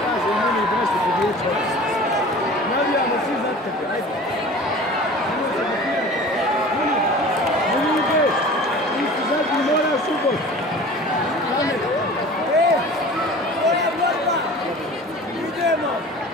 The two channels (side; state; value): both; normal; correlation 0.41